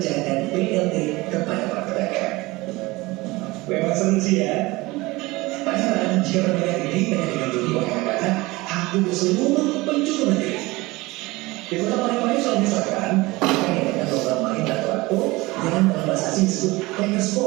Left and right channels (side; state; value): left; quieter; 21.5 dB